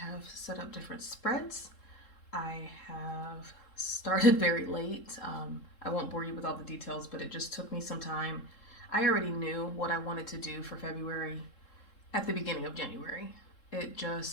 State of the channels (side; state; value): right; late; 3.7 ms